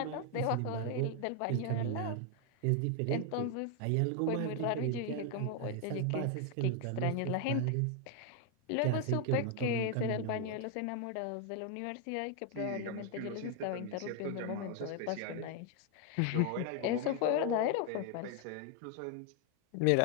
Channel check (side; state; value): both; different; correlation 0.00